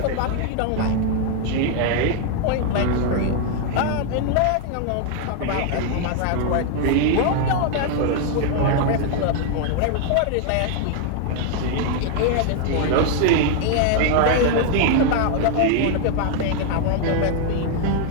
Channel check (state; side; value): different; both; correlation 0.00